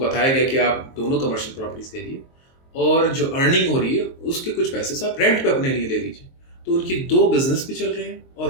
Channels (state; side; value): late; right; 23 ms